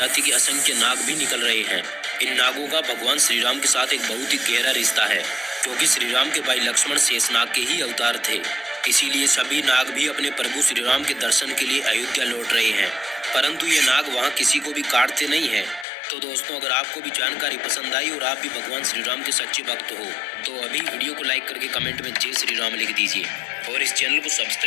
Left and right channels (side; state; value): right; drops out; at 15.9 s